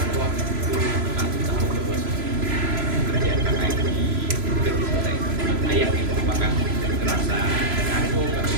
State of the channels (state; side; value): late; left; 3.0 ms